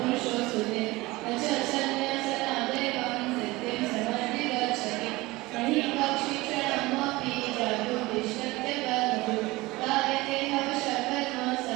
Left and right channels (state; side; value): quieter; left; 20.9 dB